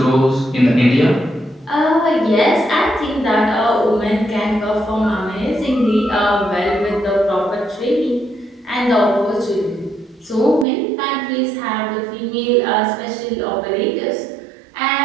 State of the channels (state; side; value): drops out; left; at 10.7 s